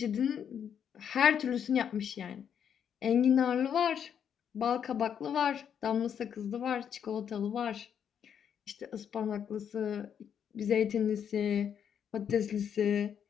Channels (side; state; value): right; quieter; 8.3 dB